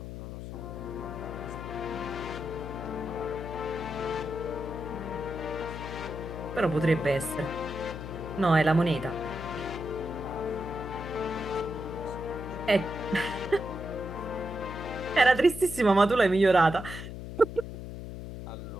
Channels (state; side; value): noise; left; hum, 8 dB below the sound